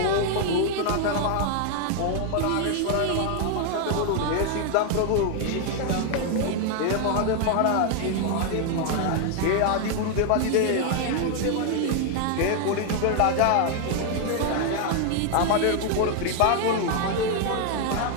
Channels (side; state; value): both; different; correlation 0.00